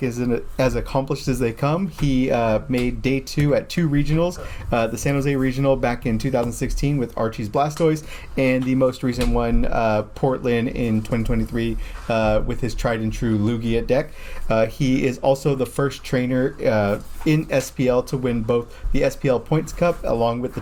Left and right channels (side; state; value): both; identical; correlation 1.00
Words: is as accomplished as they come. He made day 2 at 2 regionals, the San Jose Regional back in 2016 with Archie's Blastoise, and the most recent one, Portland in 2023 with his tried and true Lugia deck. He is also the first trainer in SPL to win both the SPL Points Cup along with the